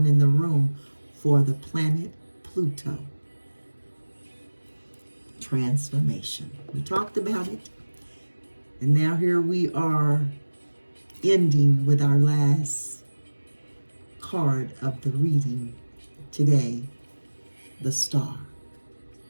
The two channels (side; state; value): both; inverted; correlation -1.00